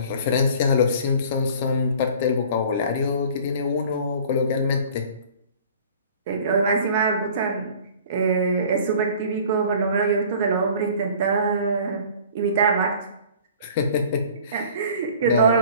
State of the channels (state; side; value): inverted; both; correlation -0.48